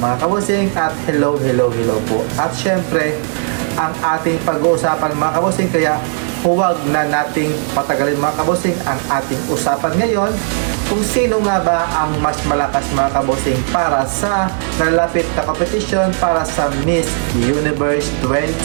mga kabusing at hello po. At syempre, ang ating pag-uusapan mga kabusing, kaya huwag na nating patagalin mga kabusing ang ating usapan ngayon kung sino nga ba ang mas malakas mga kabusing para sa nalapit na competition para sa Miss Universe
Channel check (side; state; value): left; silent; 59 dB below the other